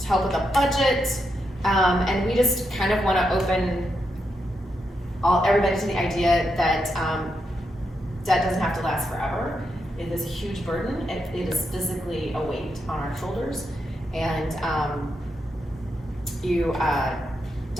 help with a budget. And we just kind of want to open everybody to the idea that debt doesn't have to last forever. It is a huge burden. It is physically a weight on our shoulders, and you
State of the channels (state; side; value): normal; both; correlation 0.83